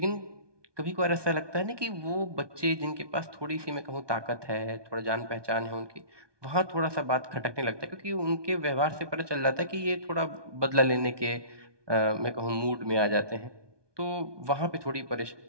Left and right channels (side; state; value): left; late; 1.2 ms